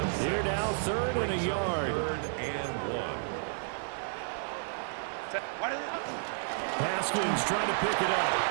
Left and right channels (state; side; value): silent; left; digital silence